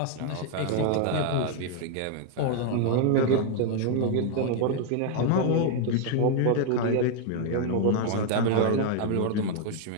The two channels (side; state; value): both; different; correlation 0.00